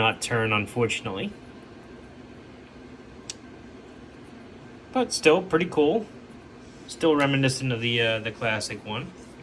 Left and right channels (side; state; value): both; identical; correlation 1.00